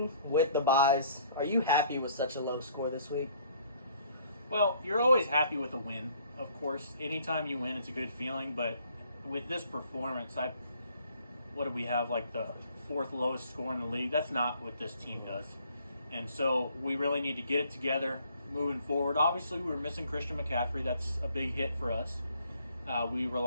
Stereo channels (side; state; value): both; inverted; correlation -0.61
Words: with the buys, are you happy with such a low score this week? Well, you're always happy with a win, of course. Anytime you win, it's a good feeling. But with this performance, what do we have, like the fourth lowest score in the league? That's not what this team does. And so we really need to get it together moving forward. Obviously, we were missing Christian McCaffrey. That's a big hit for us. We